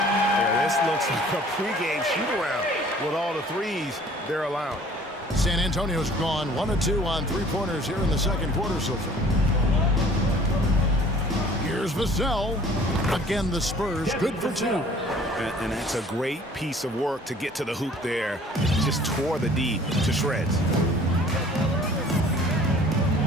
Yeah, this looks like a pregame shoot-around with all the threes they're allowing. San Antonio's gone 1 of 2 on 3-pointers here in the second quarter so far. Here's Vassell. Again, the Spurs good for 2. And that's a great piece of work to get to the hoop there. Just tore the D to shreds.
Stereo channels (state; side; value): normal; both; correlation 0.52